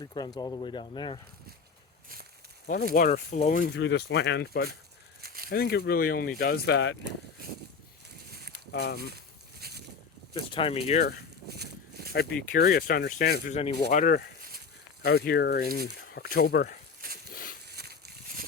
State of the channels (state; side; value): quieter; right; 5.4 dB